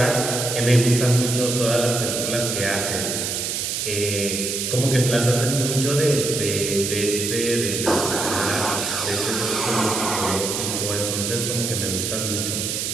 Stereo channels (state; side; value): noise; right; hiss, 2 dB below the sound